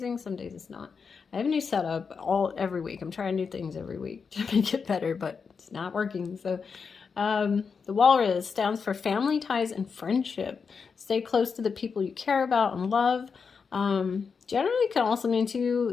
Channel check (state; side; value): quieter; right; 5.6 dB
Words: some days it's not. I have a new setup every week. I'm trying new things every week to make it better, but it's not working. So the walrus stands for family ties and friendship. Stay close to the people you care about and love. Generally can also mean